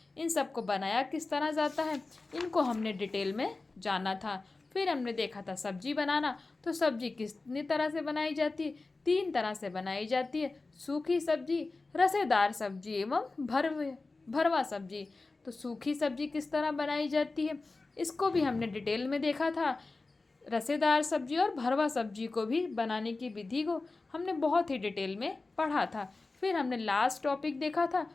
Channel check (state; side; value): quieter; right; 3.5 dB